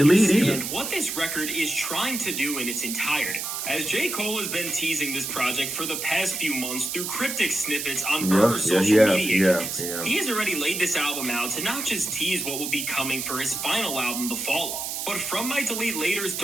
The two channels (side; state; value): right; noise; hiss, 4 dB below the sound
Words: lead either. What this record is trying to do in its entirety. As J. Cole has been teasing this project for the past few months through cryptic snippets on social media accounts, he has already laid this album out to not just tease what will be coming for his final album, The Fall Off, but from Might Delete Later's